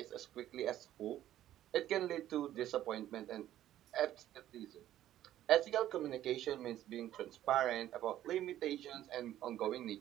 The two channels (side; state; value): left; quieter; 12.7 dB